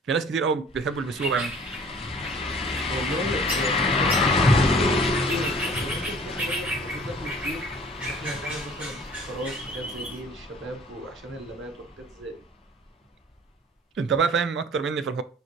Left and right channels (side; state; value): both; normal; correlation 0.51